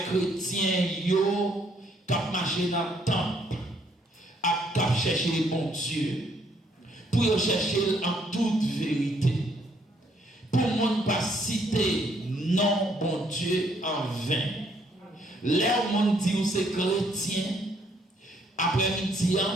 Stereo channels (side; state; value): both; normal; correlation 0.69